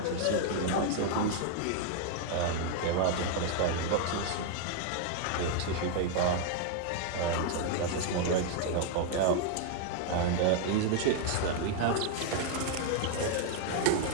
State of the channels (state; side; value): different; both; correlation 0.00